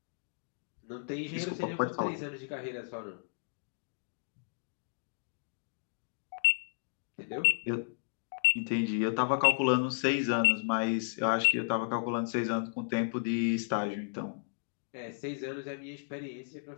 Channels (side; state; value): right; silent; digital silence